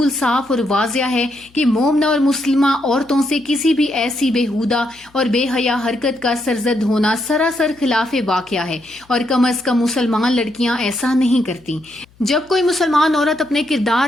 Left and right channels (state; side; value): noise; left; hum, 30 dB below the sound